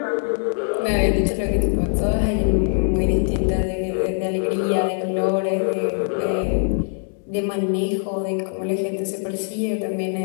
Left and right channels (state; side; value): silent; right; 60 dB below the other